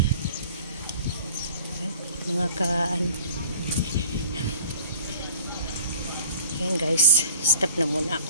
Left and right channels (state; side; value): inverted; both; correlation -0.49